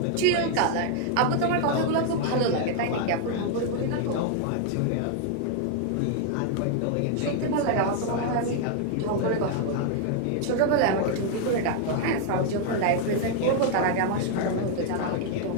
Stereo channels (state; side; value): different; both; correlation 0.00